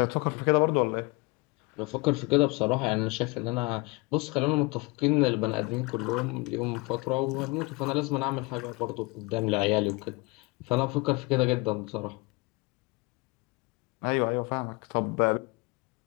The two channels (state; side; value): quieter; right; 26.3 dB